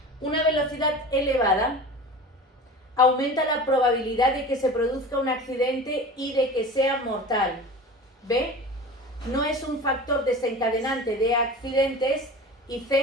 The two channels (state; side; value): normal; both; correlation 0.35